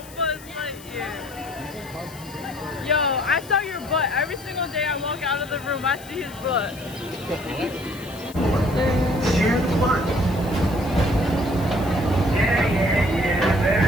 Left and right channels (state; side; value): noise; left; hiss, 19 dB below the sound